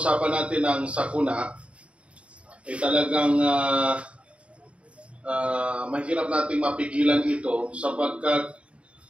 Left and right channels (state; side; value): late; left; 0.061 ms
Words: natin ng sakuna, ay talagang mahirap nating mapigilan ito sapagkat